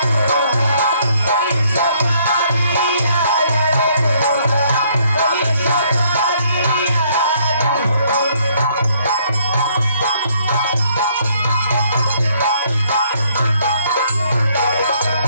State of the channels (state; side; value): inverted; both; correlation -0.66